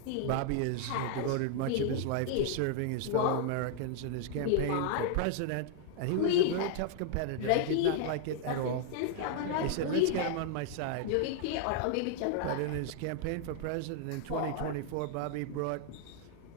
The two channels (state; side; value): different; both; correlation 0.00